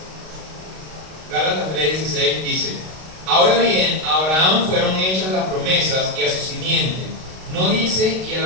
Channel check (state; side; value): late; left; 32 ms